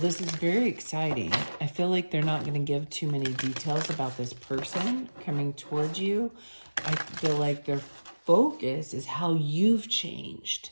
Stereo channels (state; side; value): inverted; both; correlation -1.00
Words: this is very exciting. I feel like they're not going to give too many details about this person coming towards you. I feel like their focus is how you've changed.